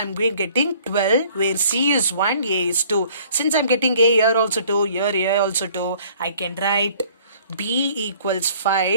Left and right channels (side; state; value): both; inverted; correlation -0.55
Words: getting 12, where C is 1, A is 2. Since I'm getting A here also 2, here also 2, I can write B equals